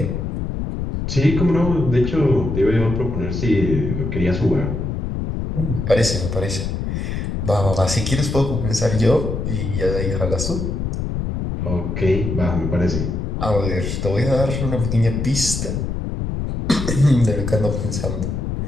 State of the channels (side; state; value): left; noise; rumble, 3 dB below the sound